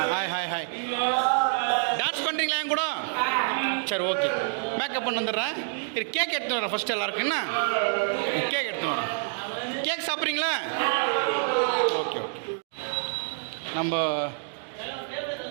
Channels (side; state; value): left; silent; digital silence